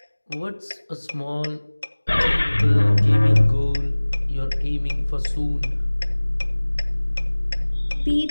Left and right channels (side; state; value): both; inverted; correlation -1.00